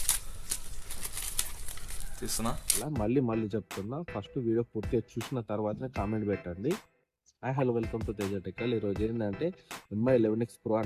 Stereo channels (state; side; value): identical; both; correlation 1.00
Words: తీస్తున్నా. మళ్ళీ చెప్తున్నా, ఫస్ట్ వీడియో పూర్తిగా చూసిన తర్వాతనే కామెంట్ పెట్టండి. Hello, welcome to Teja Tekkal. ఈరోజు ఏంటంటే MI11X Pro